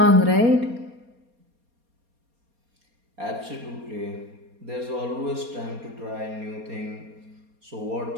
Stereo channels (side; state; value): left; late; 4.2 ms